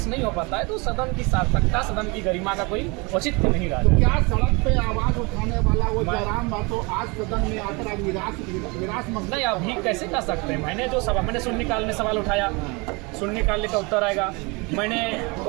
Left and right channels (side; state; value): left; quieter; 27.8 dB